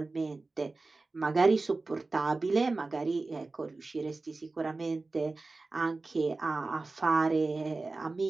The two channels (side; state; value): left; quieter; 3.5 dB